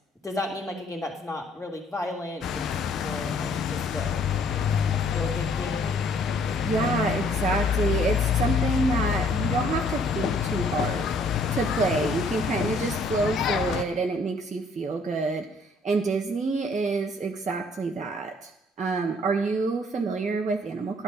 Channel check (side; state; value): both; normal; correlation 0.61